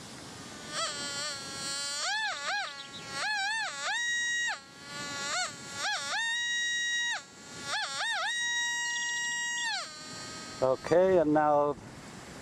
Okay, and now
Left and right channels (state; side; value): identical; both; correlation 1.00